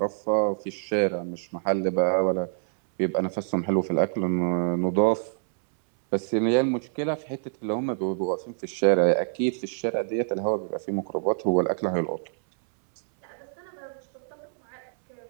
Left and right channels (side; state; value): left; silent; 60 dB below the other